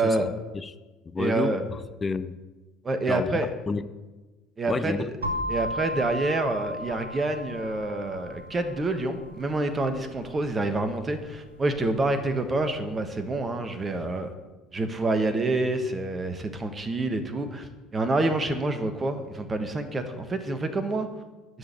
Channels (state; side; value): normal; both; correlation 0.68